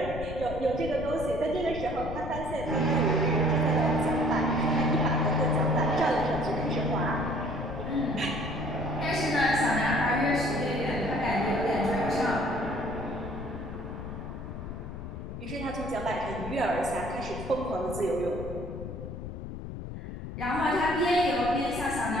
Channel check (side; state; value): left; noise; rumble, 8 dB below the sound